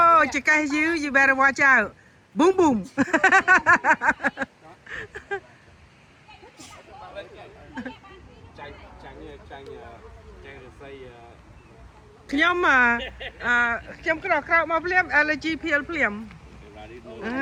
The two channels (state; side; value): identical; both; correlation 1.00